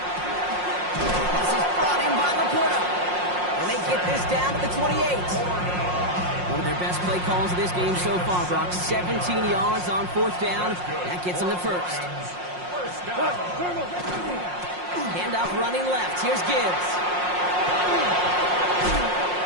This is brought in by Laporta. And they get this down to the 28. One of their best play calls of this game so far, Brock. 17 yards on fourth down. That gets them the first. Handoff running left. Here's Gibbs.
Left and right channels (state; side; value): late; left; 5.6 ms